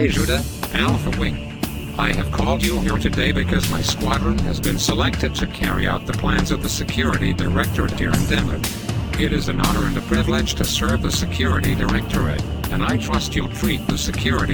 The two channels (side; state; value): both; identical; correlation 1.00